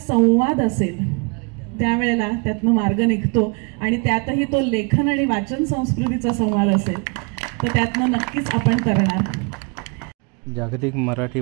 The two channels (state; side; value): quieter; left; 33.2 dB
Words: असेल त्यावेळेला त्यातनं मार्ग निघतो, आणि त्यातही तो लेखन आणि वाचन संस्कृतीचा संवाद असेल तर त्यातनं नक्कीच आपण करणार. जागतिक मराठी